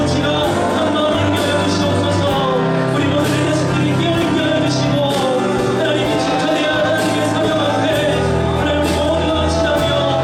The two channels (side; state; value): both; identical; correlation 1.00